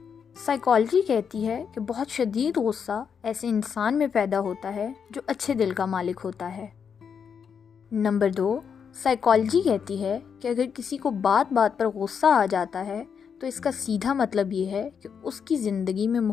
سائیکالوجی کہتی ہے کہ بہت شدید غصہ ایسے انسان میں پیدا ہوتا ہے جو اچھے دل کا مالک ہوتا ہے۔ نمبر 2، سائیکالوجی کہتی ہے کہ اگر کسی کو بات بات پر غصہ آ جاتا ہے تو اس کا سیدھا مطلب یہ ہے کہ اس کی زندگی میں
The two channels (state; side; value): quieter; right; 6.9 dB